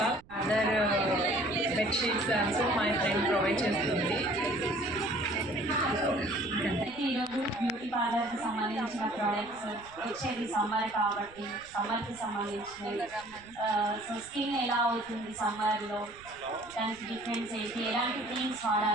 all, other bed sheets also my friend provide చేస్తుంది. ఈరోజు బ్యూటీ పార్లర్కి సంబంధించిన ప్రోడక్ట్స్ వచ్చేది సమ్మర్ కాబట్టి సమ్మర్కి సంబంధించినవి. సో స్కిన్ ఎలా అవుతుంది సమ్మర్లో, దానికి డిఫరెన్స్ ఏంటి, ఎలాంటి క్రీమ్స్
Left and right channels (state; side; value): noise; right; rumble, 24 dB below the sound